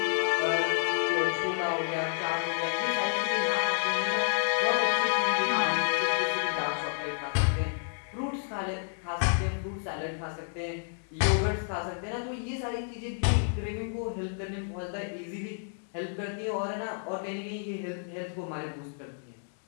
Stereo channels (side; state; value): right; silent; digital silence